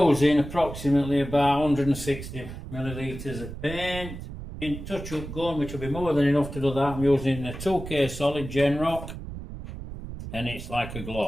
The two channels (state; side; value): noise; right; rumble, 10 dB below the sound